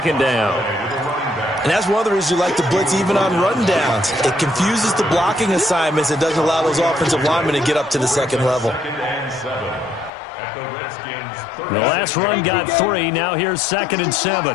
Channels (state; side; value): drops out; right; at 10.1 s